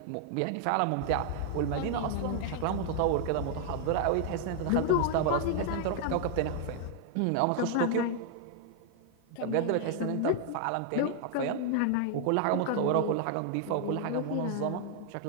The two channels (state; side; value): different; both; correlation 0.00